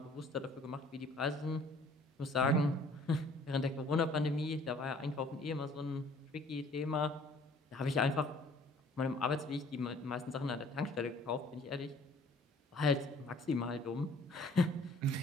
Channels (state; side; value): normal; both; correlation 0.56